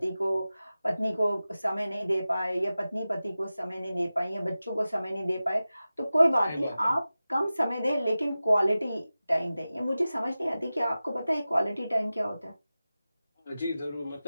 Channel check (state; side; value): inverted; both; correlation -0.95